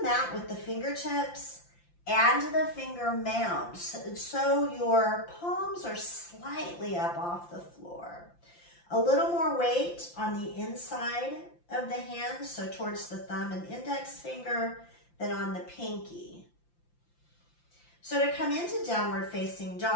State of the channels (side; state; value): right; late; 5.8 ms